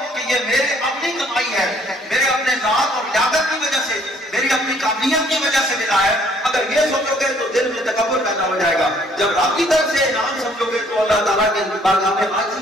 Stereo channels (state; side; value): normal; both; correlation 0.62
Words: کہ یہ میرے اپنی کمائی ہے، میرے اپنے ذات اور لیاقت کی وجہ سے، میری اپنی قابلیت کی وجہ سے ملا ہے. اگر یہ سوچو گے تو دل میں تکبر پیدا ہو جائے گا. جب رب کی طرف سے انعام سمجھو گے تو اللہ تعالیٰ کے بارگاہ میں